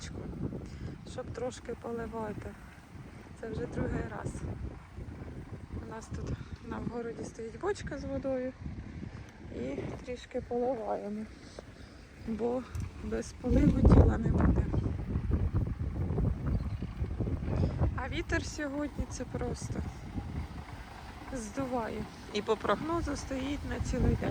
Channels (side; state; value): both; identical; correlation 1.00